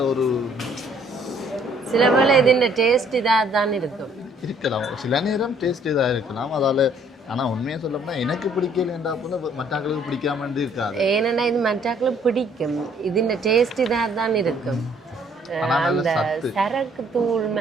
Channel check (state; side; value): normal; both; correlation 0.62